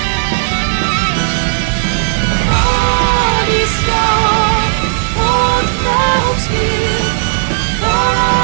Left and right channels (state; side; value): silent; left; 66 dB below the other